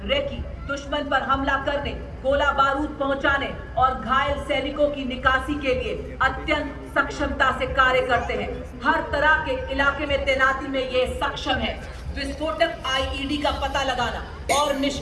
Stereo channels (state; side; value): identical; both; correlation 1.00